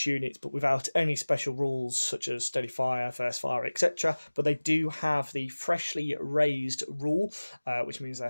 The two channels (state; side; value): inverted; both; correlation -1.00